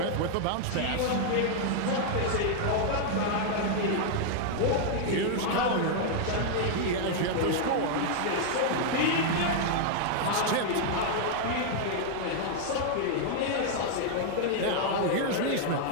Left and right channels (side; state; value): both; different; correlation 0.00